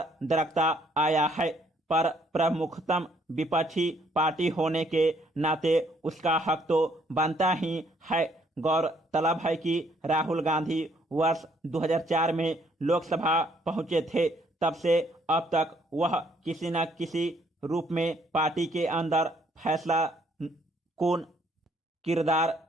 दरकता आया है, पर प्रमुखतम विपक्षी पार्टी होने के नाते उसका हक तो बनता ही है। गौरतलब है कि राहुल गांधी वर्ष 2004 में लोकसभा पहुंचे थे। तब से अब तक वह किसी न किसी रूप में पार्टी के अंदर फैसला कौन किरदार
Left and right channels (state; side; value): normal; both; correlation 0.66